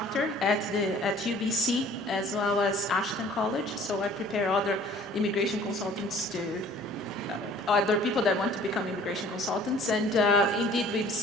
at UBC as well as Ashton College. So I prepare other immigration consultants to other people that want to become immigration consultants. And indeed, we've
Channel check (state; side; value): normal; both; correlation 0.52